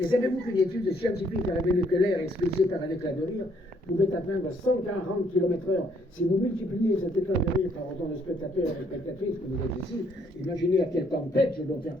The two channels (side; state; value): both; normal; correlation 0.67